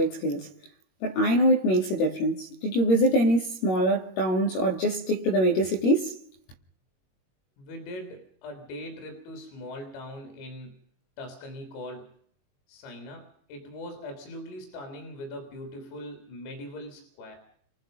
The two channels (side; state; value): right; late; 21 ms